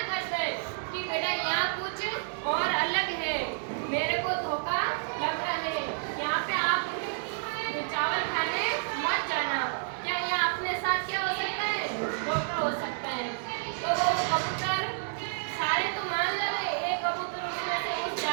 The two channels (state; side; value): silent; left; digital silence